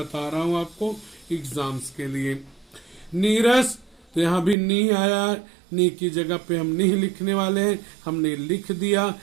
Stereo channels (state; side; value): drops out; left; at 4.5 s